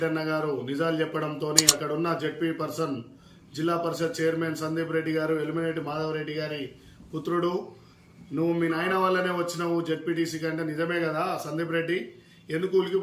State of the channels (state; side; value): identical; both; correlation 1.00